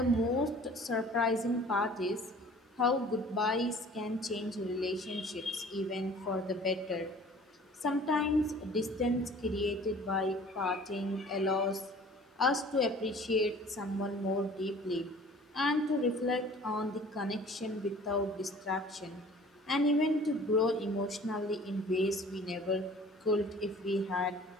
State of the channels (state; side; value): normal; both; correlation 0.48